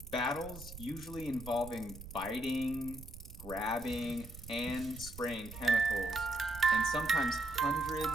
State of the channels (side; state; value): right; noise; rumble, 14 dB below the sound